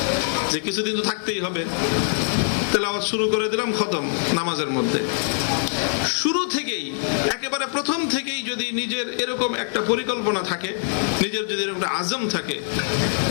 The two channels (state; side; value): silent; right; digital silence